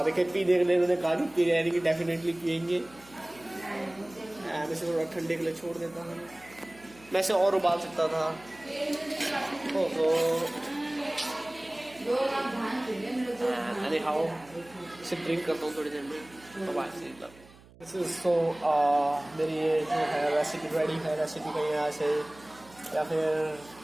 देखिए, पी देखने उन्होंने कहा कि पी रहे कि डेफिनेटली पियेंगे। मैं इसे थोड़ा ठंडे के लिए छोड़ देता हूँ। मैं इसे और उबाल सकता था। ओहो, anyhow, इसे ड्रिंक करता हूँ थोड़ी देर में। तो मेरी ये जो है रेसिपी रेडी है। रेसिपी का यहाँ से, या फिर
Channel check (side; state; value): right; noise; hum, 24 dB below the sound